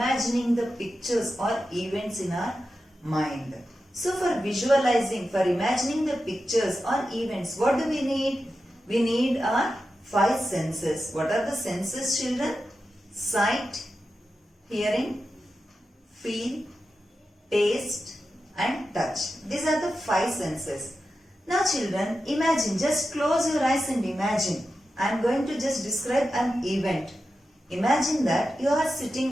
the pictures or events in our mind. So for visualizing, for imagining the pictures or events, what do we need? We need our 5 senses. What are the senses, children? Sight, hearing, feel, taste and touch. These are the 5 senses. Now children, imagine, just close your eyes and imagine. I am going to just describe an event. Imagine that you are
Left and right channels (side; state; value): both; normal; correlation 0.91